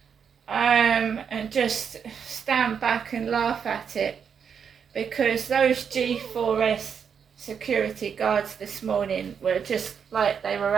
and just stand back and laugh at it, because those G4S security guards this morning were just like they were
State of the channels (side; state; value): left; quieter; 7.1 dB